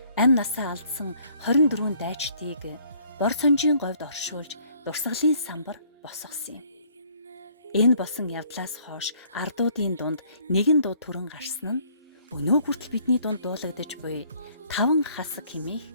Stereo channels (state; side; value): inverted; both; correlation -0.62